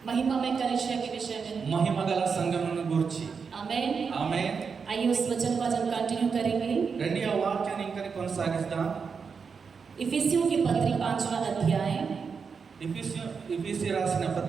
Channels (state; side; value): quieter; left; 5.7 dB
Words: महिमा में कलीसिया के विषय में. మహిమగల సంఘమును గురించి. आमेन. ఆమేన్. आइए उस वचन को आज हम कंटिन्यू करेंगे. రండి ఆ వాక్యాన్ని ఇంకా కొనసాగిద్దాం. इफिसियों की पत्री 5वां अध्याय. इफिसी రాసిన